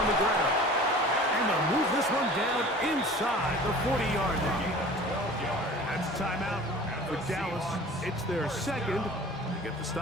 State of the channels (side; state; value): both; normal; correlation 0.43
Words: the ground. And they'll move this one down inside the 40-yard line. That's a timeout for Dallas. It's their second. They get the